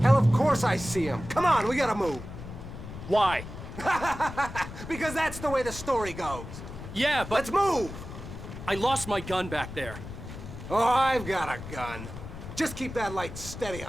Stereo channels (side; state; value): left; noise; rumble, 11 dB below the sound